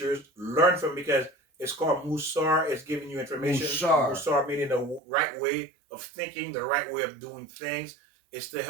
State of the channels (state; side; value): drops out; left; at 5.0 s